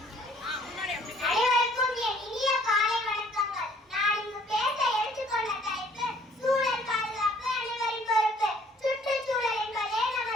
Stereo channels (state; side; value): normal; both; correlation 0.59